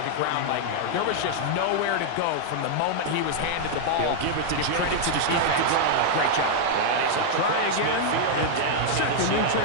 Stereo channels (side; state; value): both; different; correlation -0.01